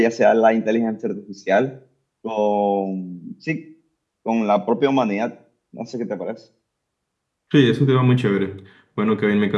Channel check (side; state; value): both; identical; correlation 1.00